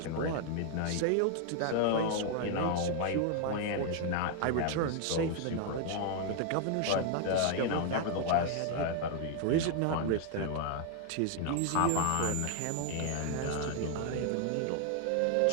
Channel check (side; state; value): both; different; correlation 0.00